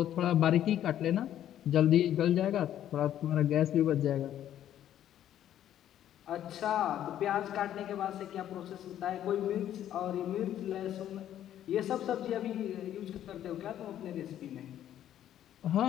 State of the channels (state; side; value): quieter; right; 11.3 dB